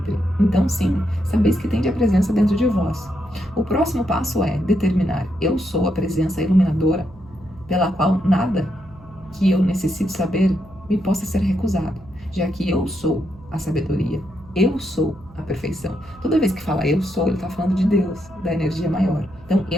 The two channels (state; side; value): noise; right; hum, 23 dB below the sound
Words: Então sim, sabeis que tende a presença dentro de vós. O próximo passo é determinar: eu sou a presença iluminadora, pela qual nada que eu necessite saber me possa ser recusado, já que eu sou a sabedoria. Eu sou a perfeição. Toda vez que fala eu sou, ele está falando de Deus, da energia maior. Então,